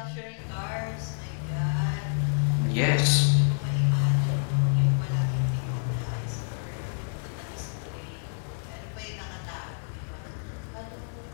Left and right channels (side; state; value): right; silent; digital silence